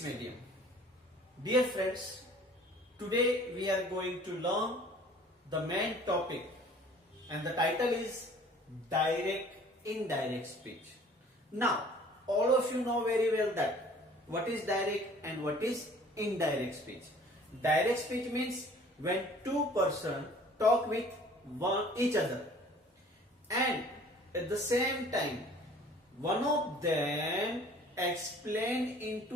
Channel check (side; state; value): both; normal; correlation 0.51